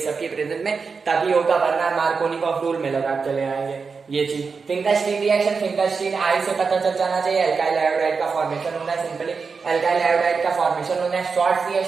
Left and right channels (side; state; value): left; quieter; 5.1 dB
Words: की प्रेजेंस में तभी होगा, वरना मार्कोनिकॉफ रूल में लगा चले आएंगे ये चीज। फिंकलस्टीन रिएक्शन, फिंकलस्टीन आई से पता चल जाना चाहिए, एल्काइल आयोडाइड का फॉर्मेशन होना है, सिंपली एल्काइल आयोडाइड का फॉर्मेशन होना है।